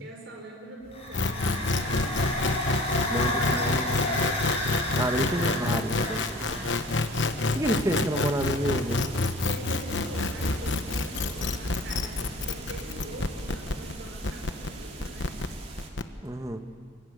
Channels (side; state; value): both; normal; correlation 0.46